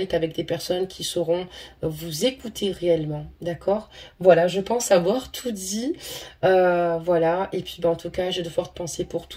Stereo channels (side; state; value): both; identical; correlation 1.00